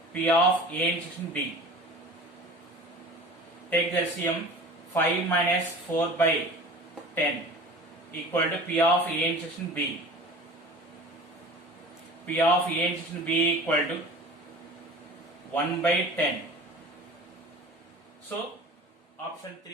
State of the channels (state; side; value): normal; both; correlation 0.40